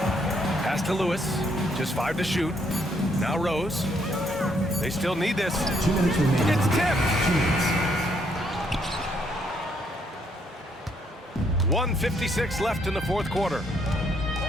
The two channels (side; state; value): both; normal; correlation 0.71